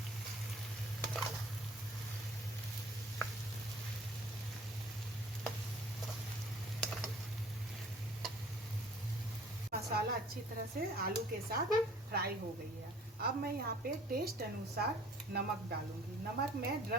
मसाला अच्छी तरह से आलू के साथ फ्राई हो गई है। अब मैं यहाँ पे टेस्ट अनुसार नमक डालूंगी। नमक मैं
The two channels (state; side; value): normal; both; correlation 0.52